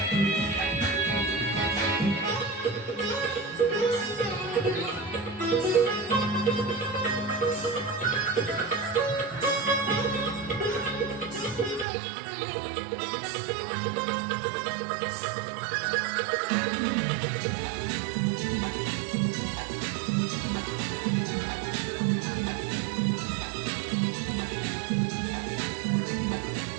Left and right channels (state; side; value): drops out; left; at 11.9 s